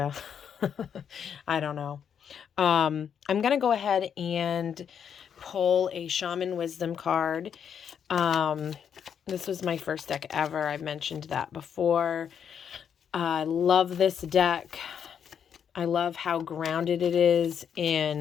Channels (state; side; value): quieter; right; 8.0 dB